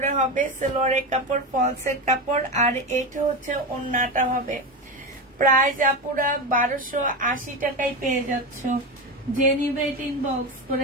হবে, সালোয়ারের কাপড়, ফলসের কাপড়, আর এইটা হচ্ছে ওড়নাটা হবে। প্রাইস আপুরা 1280 টাকায় পেয়ে যাচ্ছ। যে নিবে এটা ইনবক্স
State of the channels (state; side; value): normal; both; correlation 0.19